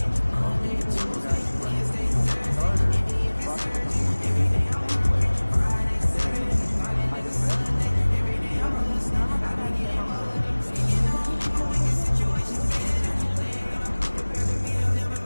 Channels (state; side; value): inverted; both; correlation -1.00